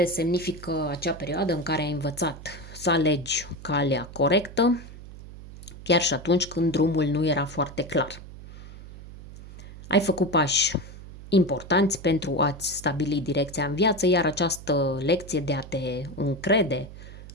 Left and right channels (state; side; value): noise; right; hum, 15 dB below the sound